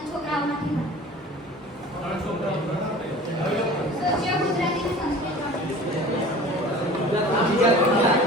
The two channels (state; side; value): normal; both; correlation 0.42